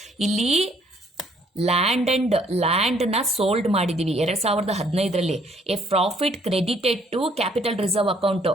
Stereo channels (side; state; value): both; normal; correlation 0.64